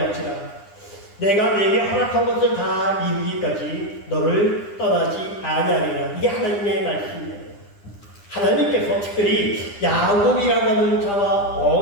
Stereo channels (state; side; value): late; right; 9.9 ms